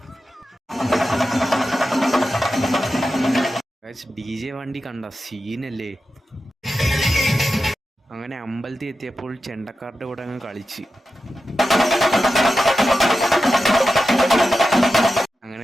ഗൈസ് DJ വണ്ടി കണ്ട സീനല്ലേ. അങ്ങനെ അമ്പലത്തിൽ എത്തിയപ്പോൾ ചെണ്ടക്കാരുടെ കൂടെ അങ്ങ് കളിച്ച് അങ്ങനെ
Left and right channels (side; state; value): both; normal; correlation 0.91